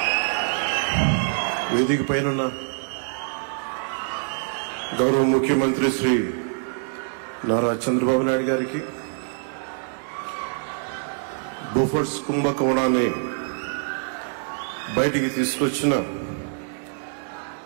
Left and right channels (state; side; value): silent; left; digital silence